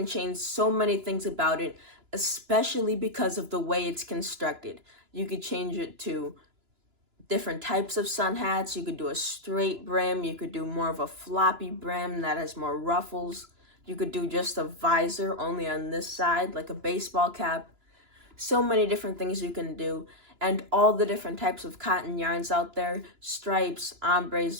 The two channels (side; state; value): left; late; 2.9 ms